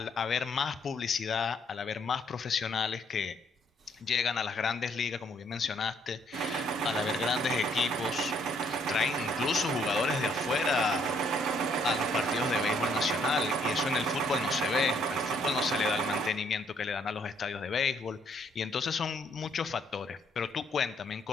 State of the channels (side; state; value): both; normal; correlation 0.68